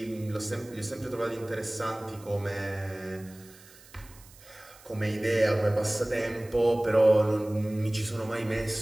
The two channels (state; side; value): noise; right; hiss, 23 dB below the sound